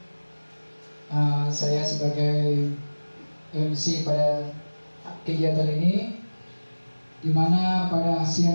saya sebagai MC pada kegiatan ini, di mana pada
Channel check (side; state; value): both; inverted; correlation -1.00